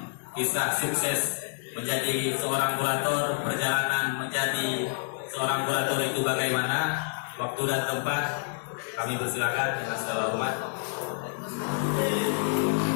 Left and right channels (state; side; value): silent; right; digital silence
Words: kisah sukses menjadi seorang kurator, perjalanan menjadi seorang kurator itu bagaimana, waktu dan tempat kami persilakan dengan segala hormat.